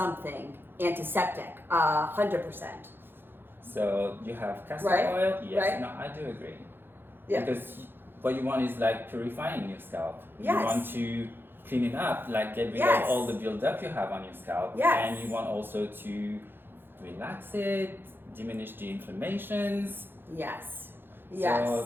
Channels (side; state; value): left; late; 0.10 ms